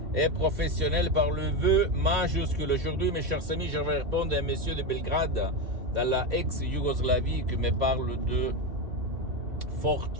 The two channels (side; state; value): left; late; 2.7 ms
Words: et professionnelle par le vœu majuscule. Aujourd'hui, mes chers amis, je vais répondre à un monsieur de Belgrade, dans la ex-Yougoslavie, qui me parle de